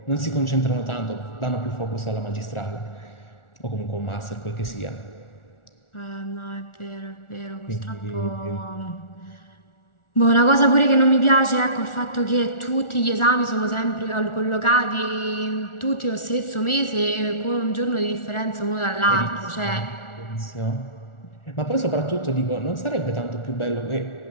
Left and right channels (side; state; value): right; late; 1.4 ms